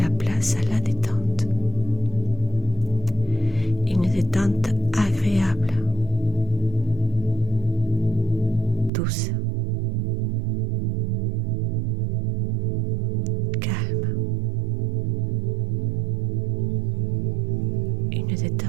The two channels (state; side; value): drops out; left; at 8.9 s